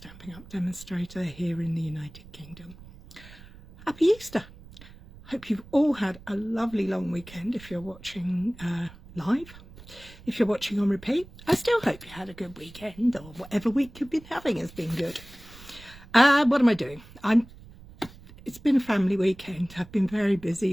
Up demonstrator here in the United Kingdom. Happy Easter! Hope you've all had a lovely long weekend if you're watching live. If you're watching on repeat, I still hope you had a good weekend, or whatever week you've been having has been good. What am I doing? It's been a family weekend. I've been very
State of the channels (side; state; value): right; noise; rumble, 20 dB below the sound